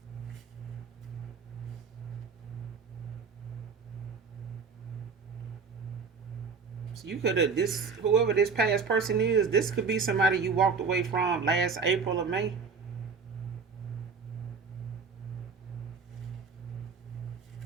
So you could have this whoever this past person is, this could be somebody you walked away from last April or May.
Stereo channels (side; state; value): left; quieter; 5.3 dB